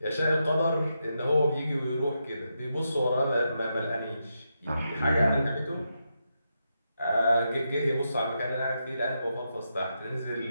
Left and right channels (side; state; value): both; inverted; correlation -0.84